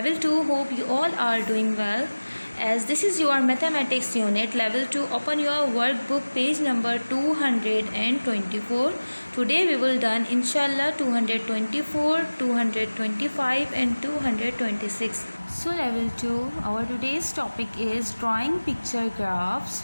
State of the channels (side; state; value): both; inverted; correlation -1.00